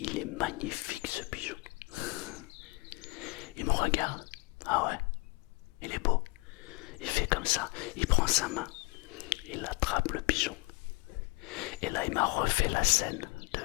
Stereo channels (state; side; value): quieter; right; 27.1 dB